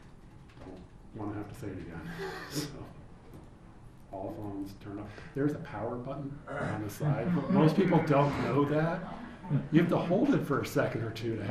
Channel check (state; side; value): identical; both; correlation 1.00